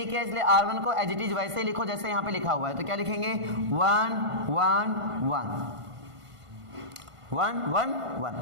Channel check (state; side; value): late; left; 1.5 ms